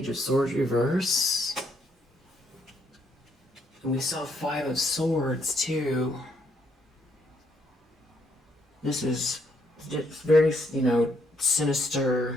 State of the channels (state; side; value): normal; both; correlation 0.72